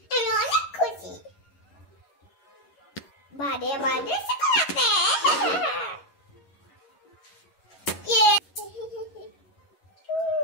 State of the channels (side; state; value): right; late; 11 ms